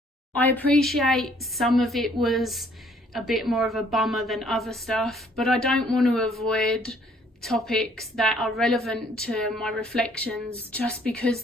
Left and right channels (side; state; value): both; normal; correlation 0.62